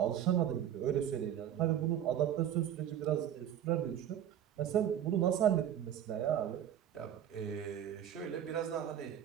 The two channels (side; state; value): left; quieter; 10.3 dB